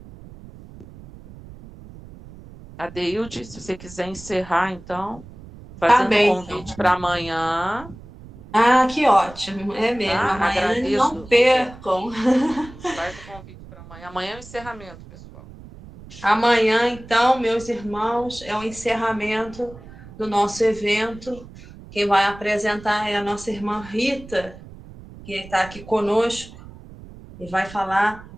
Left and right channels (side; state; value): right; noise; rumble, 18 dB below the sound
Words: Adeilde, se você quiser encerrar, então, fazendo um convite para amanhã. Ah, que ótimo. É mesmo. Amanhã agradeço. Não percam. Faz o convite para amanhã. Amanhã é o encerramento, pessoal. Amanhã, então, meus irmãos, é o encerramento do nosso evento. Quem vai apresentar é a nossa irmã Rita, que está aqui conosco e vai falar